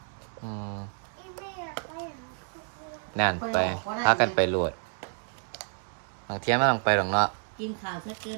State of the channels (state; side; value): silent; left; 58 dB below the other